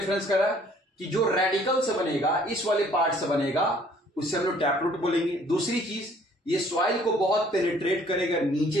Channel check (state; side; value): normal; both; correlation 0.58